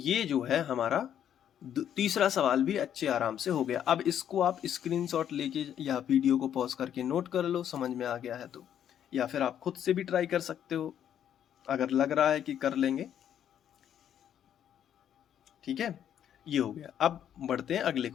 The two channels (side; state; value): right; quieter; 9.8 dB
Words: जो है हमारा तीसरा सवाल भी अच्छे आराम से हो गया। अब इसको आप स्क्रीनशॉट लेके या वीडियो को पॉज करके नोट कर लो, समझ में आ गया है तो, या फिर आप खुद से भी ट्राई कर सकते हो अगर लग रहा है कि कर लेंगे। ठीक है, ये हो गया। अब बढ़ते हैं अगले